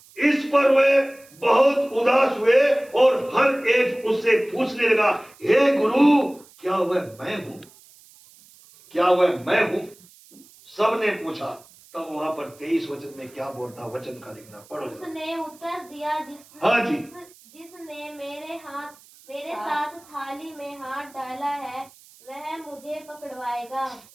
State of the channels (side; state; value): right; noise; hiss, 25 dB below the sound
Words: इस पर वे बहुत उदास हुए और हर एक उससे पूछने लगा, हे गुरु, क्या वह मैं हूं? क्या वह मैं हूं? सबने पूछा। तब वहां पर 23 वचन में क्या बोलता, वचन का लिखना पढ़ो। उसने उत्तर दिया, हाँ जी। जिसने मेरे साथ थाली में हाथ डाला है वह मुझे पकड़वाएगा।